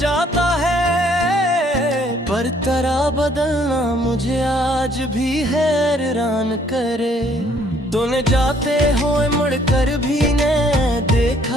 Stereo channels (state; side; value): normal; both; correlation 0.64